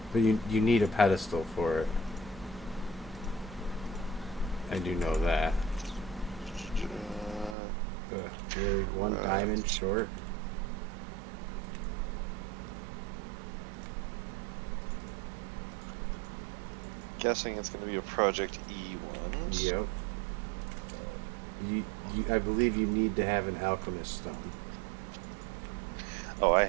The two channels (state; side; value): drops out; left; at 7.6 s